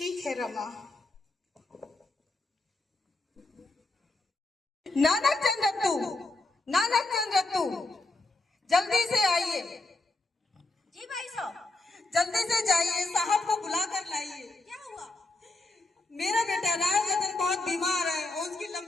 है रमा। नानक चंद रत्तू, नानक चंद रत्तू, जल्दी से आइए। जी भाई साहब। जल्दी से जाइए, साहब को बुला कर लाइए। क्या हुआ? मेरा बेटा राजरतन बहुत बीमार है और उसकी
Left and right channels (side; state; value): right; quieter; 3.1 dB